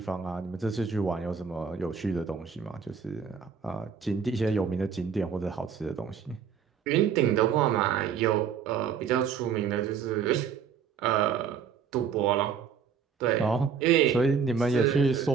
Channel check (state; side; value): quieter; left; 6.7 dB